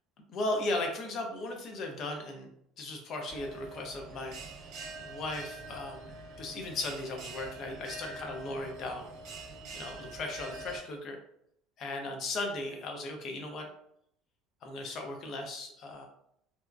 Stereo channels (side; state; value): both; normal; correlation 0.55